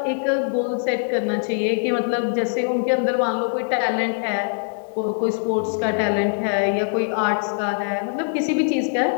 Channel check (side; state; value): right; silent; digital silence